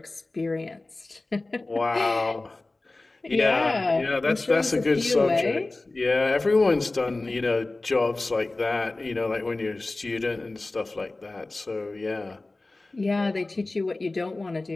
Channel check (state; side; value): quieter; right; 3.1 dB